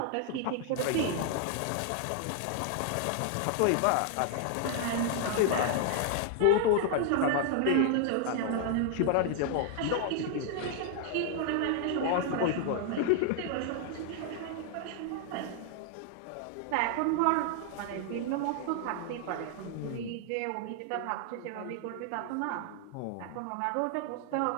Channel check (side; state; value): both; different; correlation 0.00